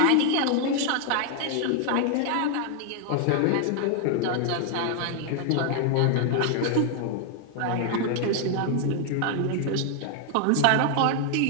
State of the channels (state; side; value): different; both; correlation 0.00